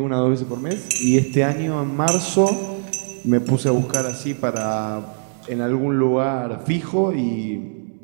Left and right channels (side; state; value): left; silent; digital silence